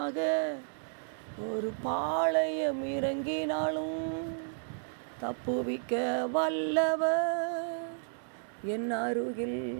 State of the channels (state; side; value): silent; left; digital silence